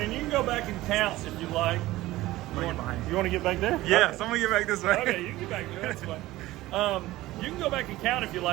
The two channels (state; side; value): quieter; left; 17.2 dB